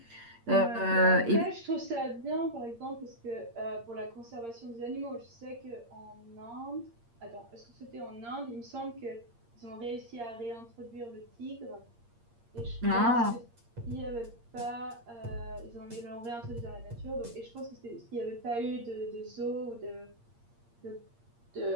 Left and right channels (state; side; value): late; left; 8.6 ms